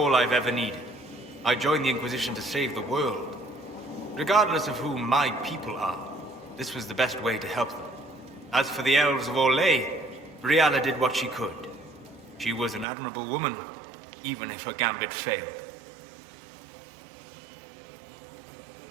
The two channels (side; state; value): left; drops out; at 12.9 s